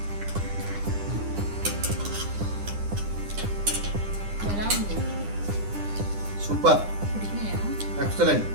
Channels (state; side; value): late; left; 9.9 ms